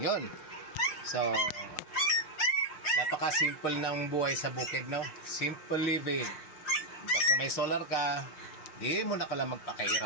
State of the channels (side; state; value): right; late; 5.6 ms